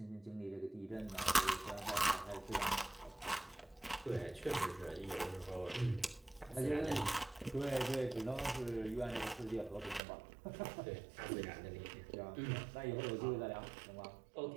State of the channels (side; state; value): left; drops out; at 10.0 s